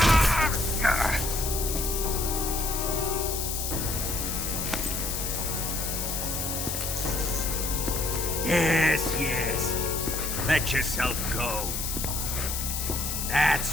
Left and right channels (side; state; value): left; noise; hiss, 3 dB below the sound